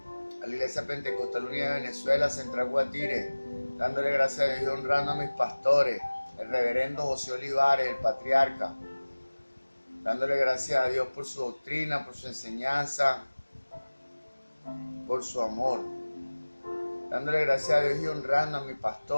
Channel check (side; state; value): both; inverted; correlation -1.00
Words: a la Iglesia Pentecostal Unida de Venezuela, Central Guatire. Dándole gracias a Dios y honrando a mis pastores, el reverendo José Olivares, el patriarca. Dándole gracias a Dios por su doctrina, por su enseñanza, por su amor. Dándole gracias a Dios y honrando a mi